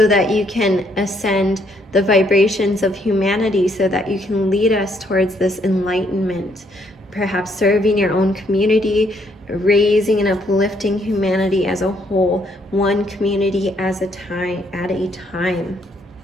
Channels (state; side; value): normal; both; correlation 0.70